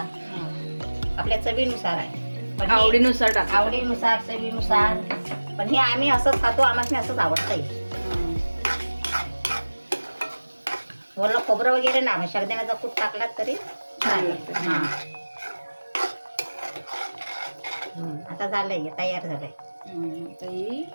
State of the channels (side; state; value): both; inverted; correlation -1.00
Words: आपल्या चवीनुसार आहे. पण आवडीनुसार टाका. आवडीनुसार चवीनुसार. पण हे आम्ही असंच खातो. आम्हाला असंच आवडतंय. वरलं खोबरं वगैरे ना शेंगदाण्याचा कूट टाकला तरी चालेल. हा आता झालंय तयार झालंय.